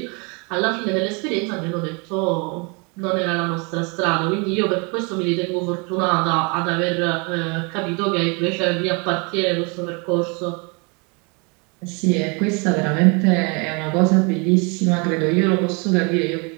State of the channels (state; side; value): quieter; left; 32.0 dB